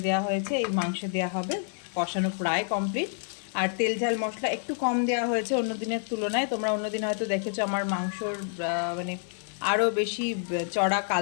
দেওয়া হয়েছে, এই মাংস দেওয়া হবে। কষানো প্রায় কমপ্লিট। আর তেল ঝাল মশলা একটু কম দেওয়া হয়েছে অন্য দিনের তুলনায়। তোমরা অন্য দিন হয়তো দেখেছো আমার মাংসর মানে আরও বেশি চড়া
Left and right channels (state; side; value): silent; right; 59 dB below the other